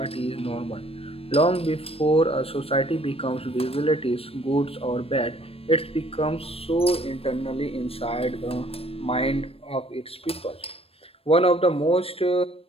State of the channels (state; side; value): late; right; 0.28 ms